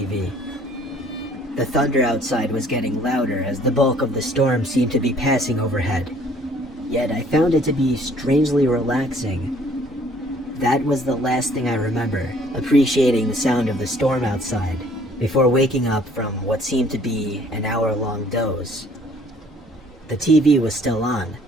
The thunder outside was getting louder as the bulk of the storm seemed to be passing overhead. Yet I found it to be strangely relaxing. That was the last thing I remember, appreciating the sound of the storm outside, before waking up from what seemed to be an hour-long doze. The TV was still on,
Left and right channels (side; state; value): both; normal; correlation 0.58